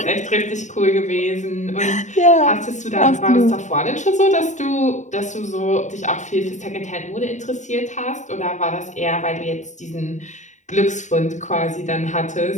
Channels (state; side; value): late; right; 0.35 ms